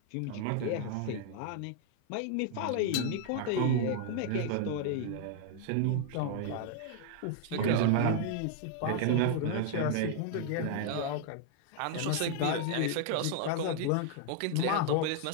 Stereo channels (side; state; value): both; different; correlation 0.00